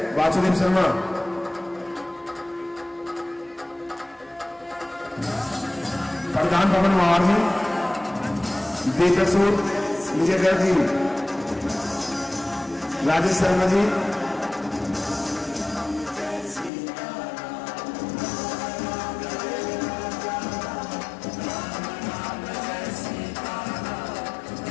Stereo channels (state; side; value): drops out; right; at 16.7 s